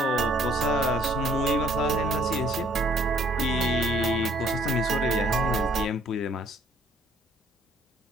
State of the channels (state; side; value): normal; both; correlation 0.61